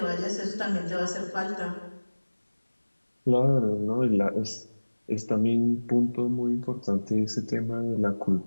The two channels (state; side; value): inverted; both; correlation -1.00